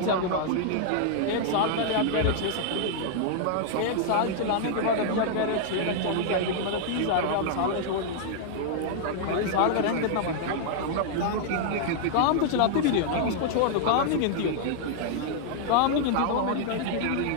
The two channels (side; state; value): both; different; correlation -0.01